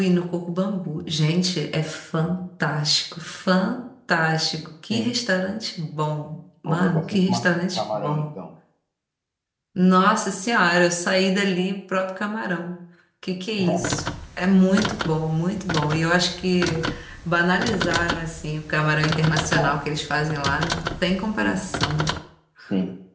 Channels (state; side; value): identical; both; correlation 1.00